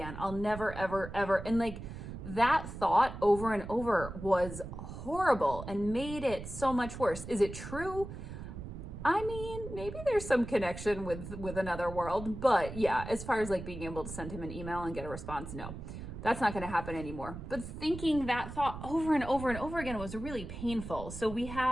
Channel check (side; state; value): right; noise; rumble, 10 dB below the sound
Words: I'll never, ever, ever. And like that thought over and over was horrible and made it so much worse. Is it true? I mean, maybe there's some connection with another world, but yeah, as far as like being able to send him an email and get a response, no, that's not going to happen anymore. But thinking that thought over and over and over again was really painful. So we